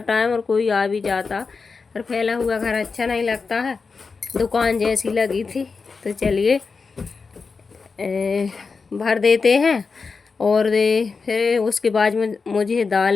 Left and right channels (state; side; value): quieter; right; 4.8 dB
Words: टाइम और कोई आ भी जाता। पर फैला हुआ घर अच्छा नहीं लगता है, दुकान जैसी लगी थी। तो चलिए भर देते हैं। और फिर उसके बाद मुझे